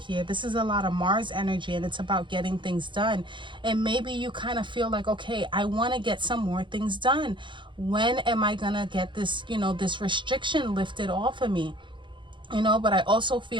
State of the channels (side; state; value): left; late; 0.23 ms